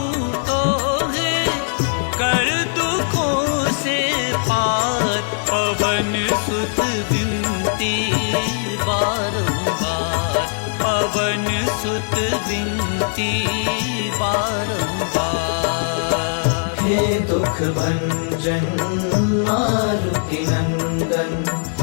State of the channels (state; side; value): silent; right; 66 dB below the other